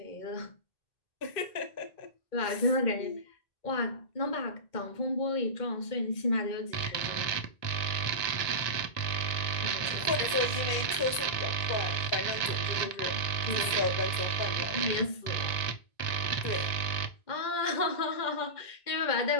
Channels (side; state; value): right; late; 1.9 ms